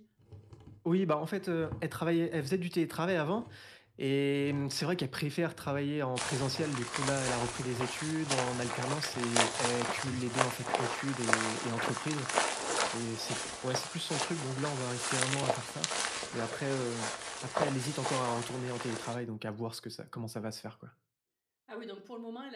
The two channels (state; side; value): identical; both; correlation 1.00